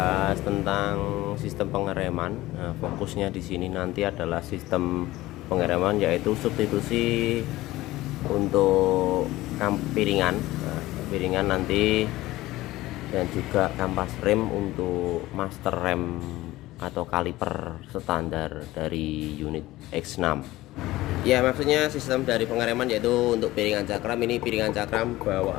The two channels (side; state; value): right; quieter; 17.5 dB